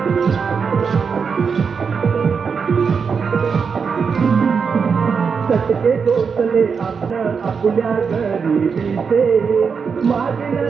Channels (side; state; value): left; quieter; 5.8 dB